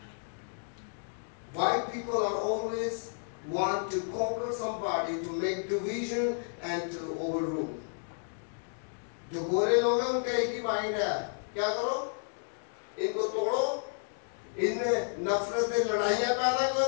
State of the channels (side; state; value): right; silent; digital silence